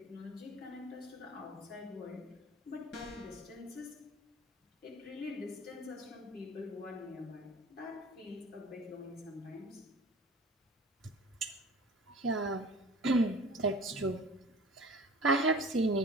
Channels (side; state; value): both; normal; correlation 0.42